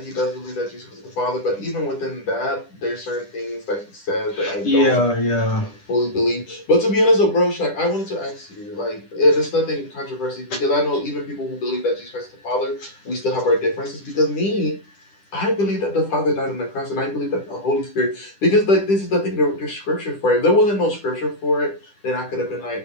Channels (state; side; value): late; right; 10 ms